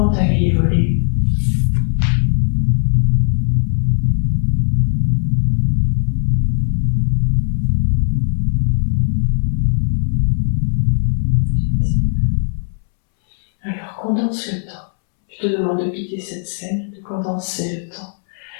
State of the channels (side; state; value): right; silent; 68 dB below the other